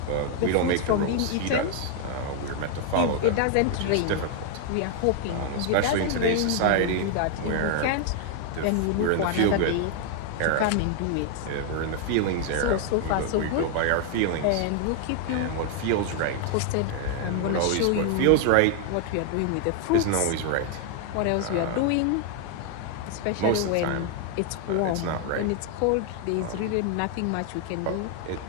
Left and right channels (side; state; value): both; different; correlation 0.00